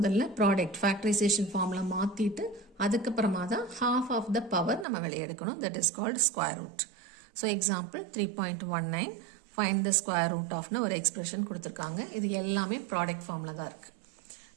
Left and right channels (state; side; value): drops out; left; at 4.9 s